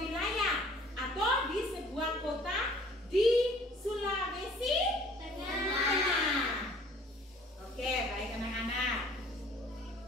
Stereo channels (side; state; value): both; normal; correlation 0.54